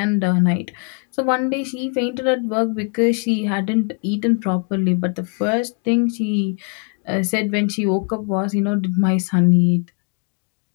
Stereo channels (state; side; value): quieter; right; 38.6 dB